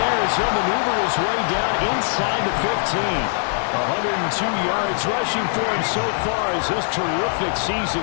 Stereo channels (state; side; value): silent; right; 57 dB below the other